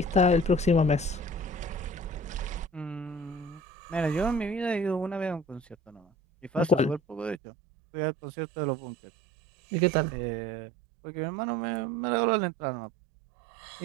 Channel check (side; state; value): left; drops out; at 7.4 s